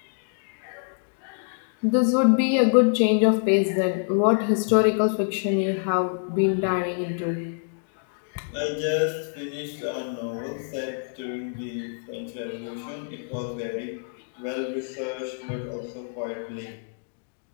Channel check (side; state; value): right; silent; digital silence